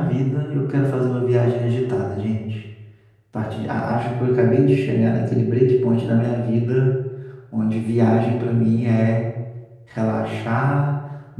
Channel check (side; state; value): both; identical; correlation 1.00